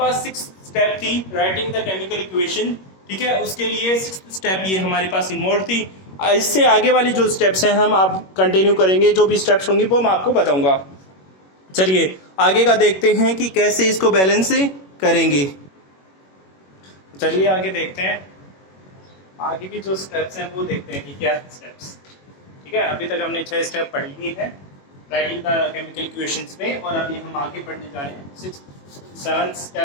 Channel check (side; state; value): right; late; 21 ms